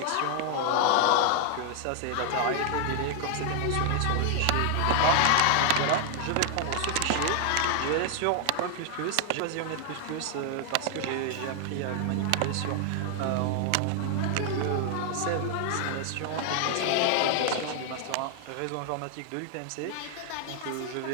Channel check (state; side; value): different; both; correlation 0.00